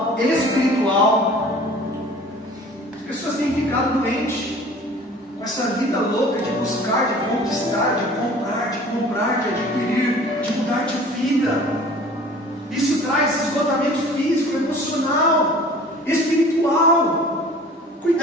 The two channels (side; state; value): both; normal; correlation 0.46